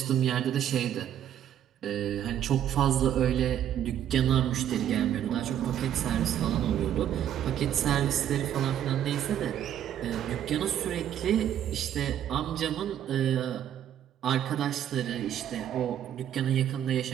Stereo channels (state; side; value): quieter; left; 10.4 dB